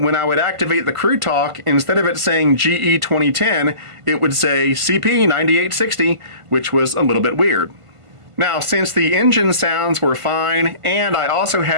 when I would activate the Crew Talk, instead of it saying GE 2010, it would say CP 9860, which was a little bit weird. Now, since the engine sounds were fine, and I also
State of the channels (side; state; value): left; late; 1.5 ms